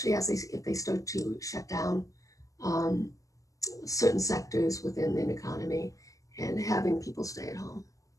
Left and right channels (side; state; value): right; late; 0.16 ms